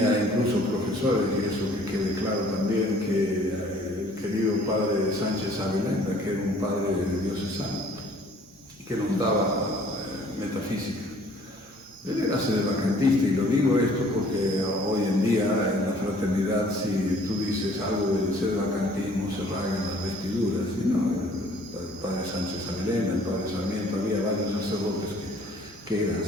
incluso profesores, y eso que quede claro también, que el querido padre Sánchez Avelenda, que era un padre diocesano, que nos daba metafísica. Él era sedevacantista, y lo digo esto porque hoy en día en la fraternidad, si tú dices algo del sedevacantismo, se rasgan las vestiduras. Y no, el padre Sánchez Avelenda, el padre Sarmiento, había varios sacerdotes que eran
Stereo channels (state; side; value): normal; both; correlation 0.56